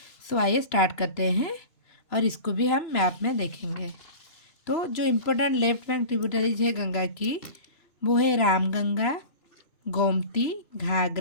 So आइए स्टार्ट करते हैं और इसको भी हम मैप में देखेंगे। तो जो इम्पोर्टेंट लेफ्ट बैंक ट्रिब्यूटरीज है गंगा की वो है Ramganga, Gomti,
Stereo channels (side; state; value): right; late; 3.0 ms